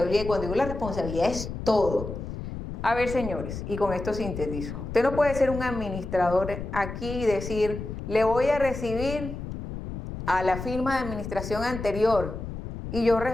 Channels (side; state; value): left; noise; rumble, 8 dB below the sound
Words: y cuando digo la responsabilidad es todo. A ver, señores, y con esto sintetizo. Usted no puede ser un administrador aquí y decir, le voy a recibir a la firma de administración anterior y yo